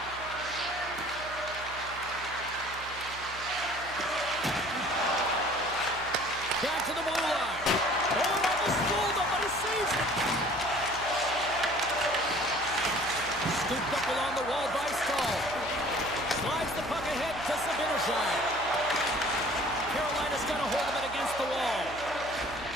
Back to the blue line. Oh, almost fooled him, but he saves it. Scooped up along the wall by Stahl. Slides the puck ahead to Sabinishai. Carolina's got a hold of it against the wall.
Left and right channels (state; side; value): noise; right; hum, 16 dB below the sound